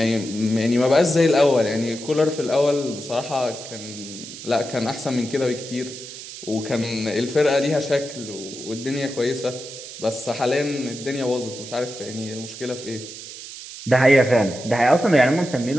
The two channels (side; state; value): right; noise; hiss, 12 dB below the sound